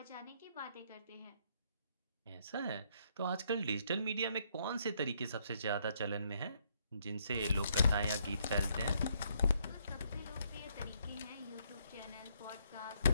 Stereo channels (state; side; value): inverted; both; correlation -0.72